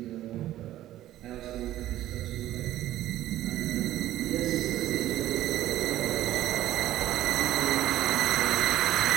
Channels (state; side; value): quieter; left; 14.1 dB